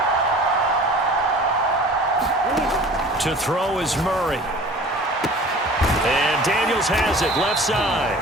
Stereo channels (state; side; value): normal; both; correlation 0.44